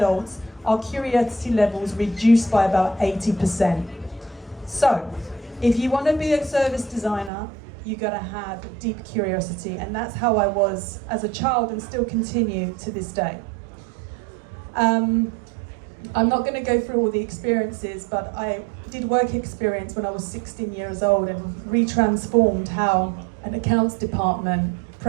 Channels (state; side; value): drops out; left; at 7.3 s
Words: our curiosity levels reduce by about 80%. So, if you want to be a service designer, you got to have deep curiosity, and that's how I was as a child and still continue to this day. I'm not going to go through all the experiences, but I did work experience when I was 16 years old and retransformed how an accounts department